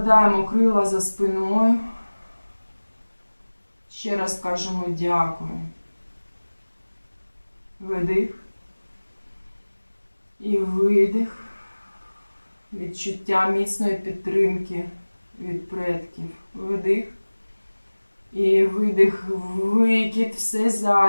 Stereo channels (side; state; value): both; inverted; correlation -1.00